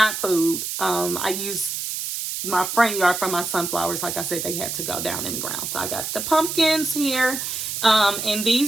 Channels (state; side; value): noise; right; hiss, 4 dB below the sound